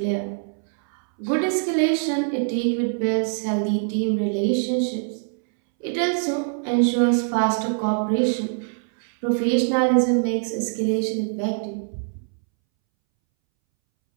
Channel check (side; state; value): left; silent; 63 dB below the other